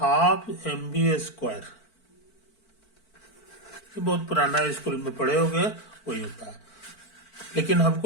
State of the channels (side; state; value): right; late; 4.5 ms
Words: mv²। ये बहुत पुराना स्कूल में पढ़े होंगे, वही होता है। लेकिन